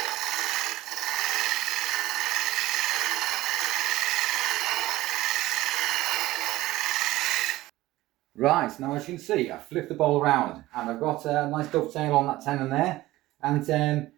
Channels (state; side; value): quieter; left; 17.2 dB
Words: Right, now as you can see, I've flipped the bowl around and I've got a nice dovetail on that tenon there. And